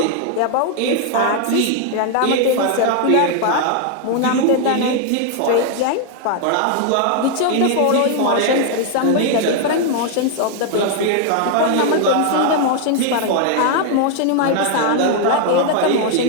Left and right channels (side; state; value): both; different; correlation 0.00